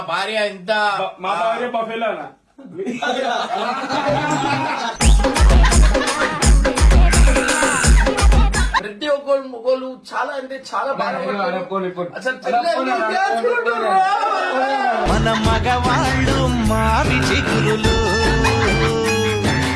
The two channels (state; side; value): identical; both; correlation 1.00